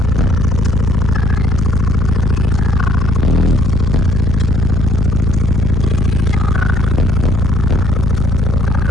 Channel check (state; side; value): normal; both; correlation 0.62